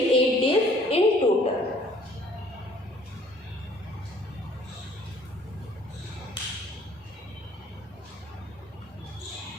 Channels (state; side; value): normal; both; correlation 0.58